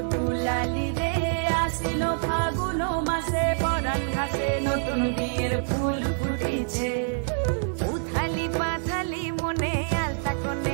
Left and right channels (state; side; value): silent; left; digital silence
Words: দুলালি রে। আশ্বিন ফাগুন মাসে পরান ঘাসে নতুন বিয়ের ফুল ফুটিছে, উথালি পাথালি মনে আলতা